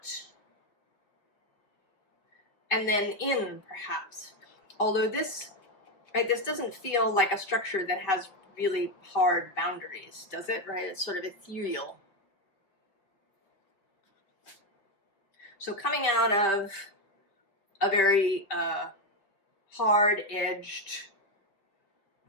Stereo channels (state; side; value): late; right; 5.0 ms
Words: And then in, perhaps. Although this doesn't feel like a structure that has really hard boundaries, does it? Right? It's sort of ethereal. So coming out of a very hard-edged